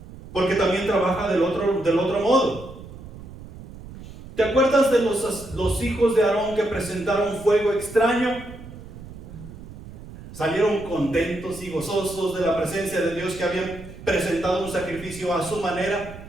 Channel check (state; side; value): noise; right; rumble, 15 dB below the sound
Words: Porque también trabaja del otro modo. ¿Te acuerdas de los hijos de Aarón que presentaron fuego extraño? Salieron contentos y gozosos de la presencia de Dios, que habían presentado un sacrificio a su manera.